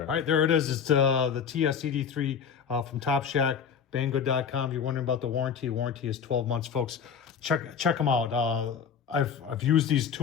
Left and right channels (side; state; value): right; quieter; 6.9 dB